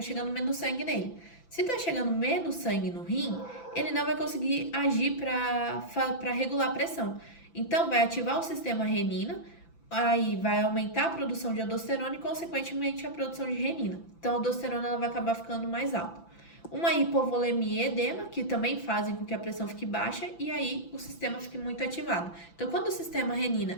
menos sangue nele. Se está chegando menos sangue no rim, ele não vai conseguir agir para regular a pressão. Então, vai ativar o sistema renina, aí vai aumentar a produção de aldosterona e, consequentemente, a produção de renina. Então, a aldosterona ela vai acabar ficando mais alta. Uma hipovolemia e edema, que também fazem com que a pressão fique baixa e aí o sistema fique muito ativado. Então, quando o sistema renina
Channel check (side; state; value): right; late; 5.9 ms